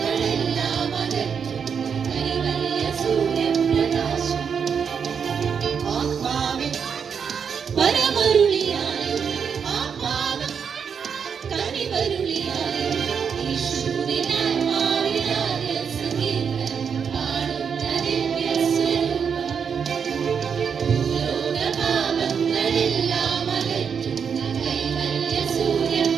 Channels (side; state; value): left; quieter; 6.8 dB